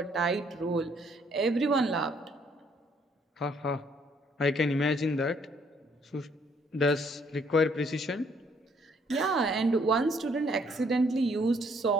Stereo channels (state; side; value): normal; both; correlation 0.66